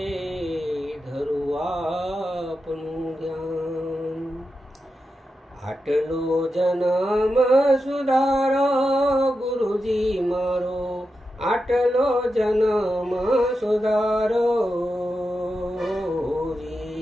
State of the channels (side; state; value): both; normal; correlation 0.89